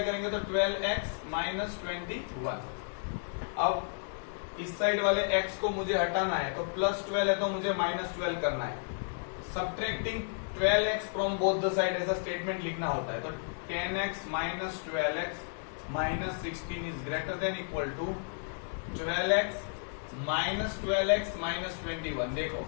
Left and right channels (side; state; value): right; silent; digital silence